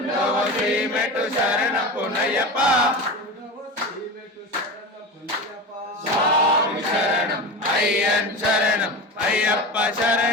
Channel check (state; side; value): normal; both; correlation 0.26